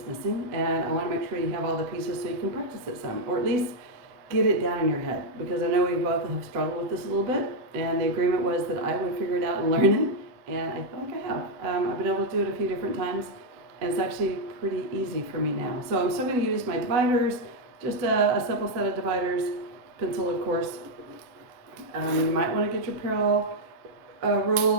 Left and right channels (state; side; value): late; left; 8.0 ms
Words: missing and I want to make sure you have all the pieces so you can practice it some, or at least get it down in your head, because I know we both have struggled with this a little bit, and the agreement was that I would figure it out and learn it, and I feel like I have. I've been able to do it a few different times and it's actually pretty easy for me now. So I'm still going to use my dividers, just a simple set of dividers, pencil of course. You might want to get your parallel